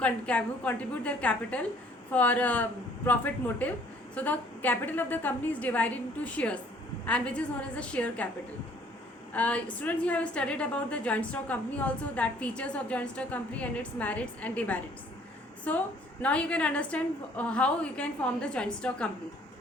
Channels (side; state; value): both; normal; correlation 0.59